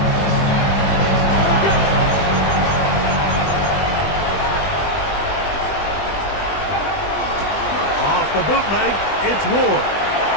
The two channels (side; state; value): right; late; 20 ms